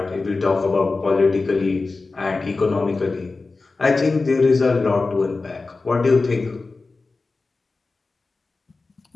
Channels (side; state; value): right; quieter; 3.8 dB